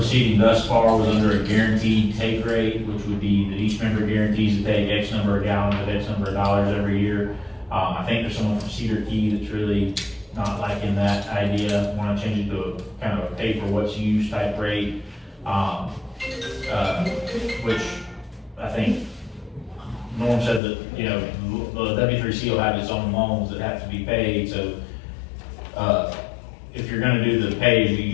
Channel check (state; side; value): drops out; right; at 20.6 s